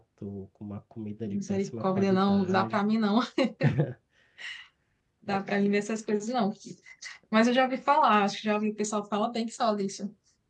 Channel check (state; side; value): identical; both; correlation 1.00